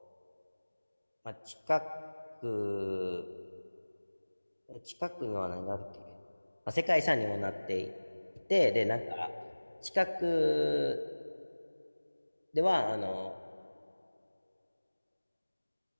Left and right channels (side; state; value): both; inverted; correlation -1.00